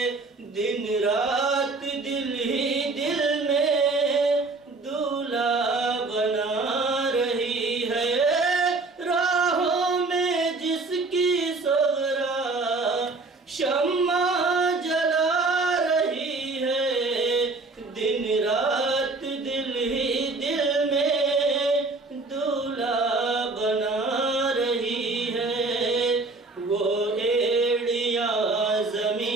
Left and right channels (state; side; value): quieter; left; 3.5 dB